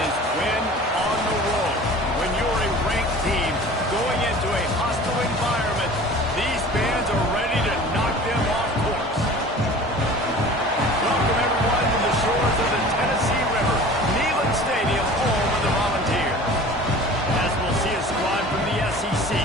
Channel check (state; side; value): normal; both; correlation 0.42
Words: win on the road. When you're a ranked team going into a hostile environment, these fans are ready to knock them off course. Welcome everyone to the shores of the Tennessee River, Neyland Stadium, home of the Volunteers. As we'll see a squad from the SEC,